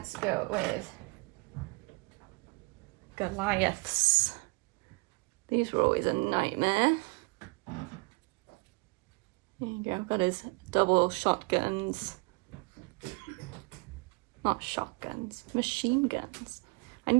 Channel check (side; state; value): left; quieter; 28.3 dB